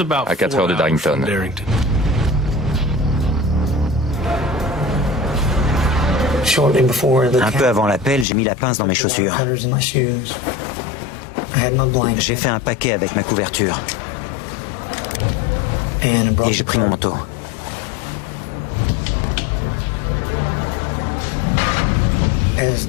à 4 heures de Darrington. Un peu avant l'appel, j'ai mis la pince dans mes chaussures. J'ai fait un paquet avec ma couverture. Et j'ai pris mon manteau.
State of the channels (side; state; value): right; drops out; at 8.2 s